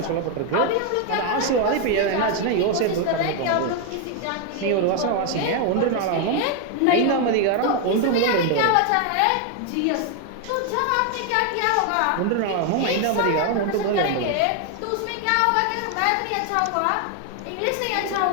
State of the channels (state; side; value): different; both; correlation 0.01